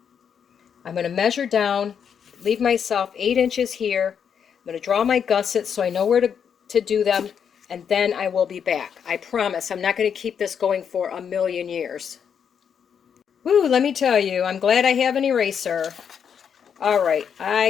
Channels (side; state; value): right; quieter; 7.6 dB